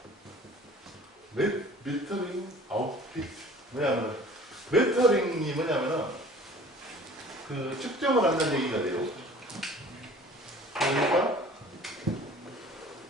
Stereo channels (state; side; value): normal; both; correlation 0.47